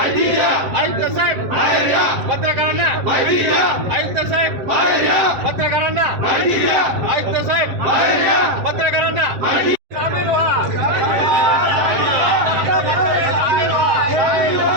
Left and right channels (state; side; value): late; left; 7.7 ms